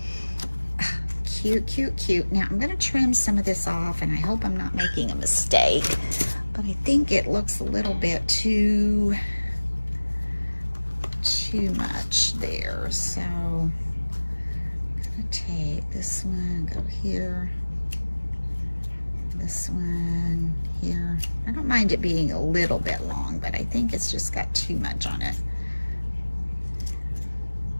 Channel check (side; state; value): both; inverted; correlation -1.00